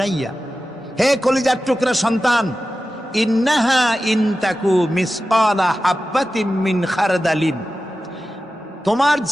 হে কলিজার টুকরা সন্তান, ইন্নাহা ইনতাকু মিসকালা হাব্বাতিন মিন খারদালিন, তোমার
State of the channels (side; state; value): both; normal; correlation 0.94